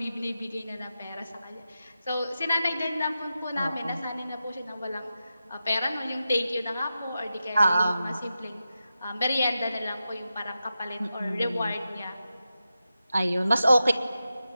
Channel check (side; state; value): both; inverted; correlation -0.91